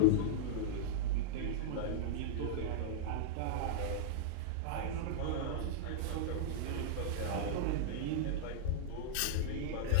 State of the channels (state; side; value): different; both; correlation -0.02